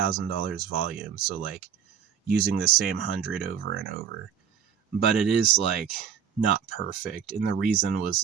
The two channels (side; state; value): left; quieter; 7.9 dB